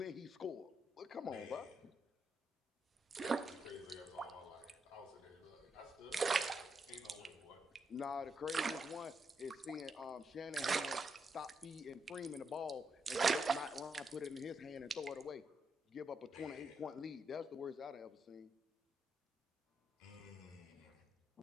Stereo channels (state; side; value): normal; both; correlation 0.81